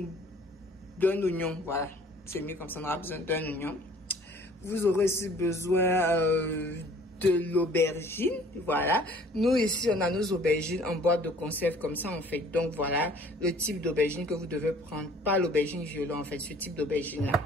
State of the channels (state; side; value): normal; both; correlation 0.53